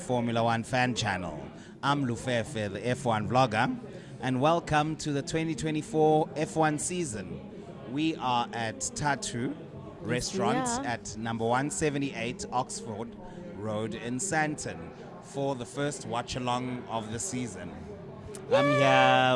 One fan channel. I'm Lufefe, the F1 vlogger, and welcome to the 2024 F1 season. We are at Thathu restaurant at number 178 Oxford Road in Sandton for the first Watchalong of the season. I'm here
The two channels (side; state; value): both; identical; correlation 1.00